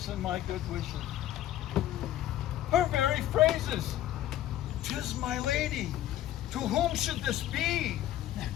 and my good wishes. Her very phrases. 'Tis my lady. To whom should this be?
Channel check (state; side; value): quieter; right; 12.8 dB